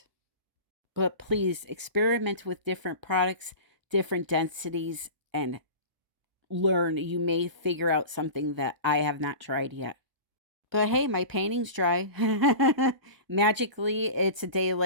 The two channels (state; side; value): late; left; 1.0 ms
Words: But please experiment with different products, different densities, and learn. You may figure out something that I have not tried yet. But hey, my painting's dry. Magically, it's a day